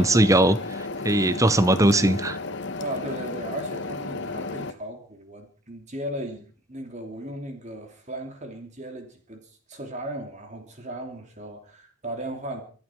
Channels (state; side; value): normal; both; correlation 0.57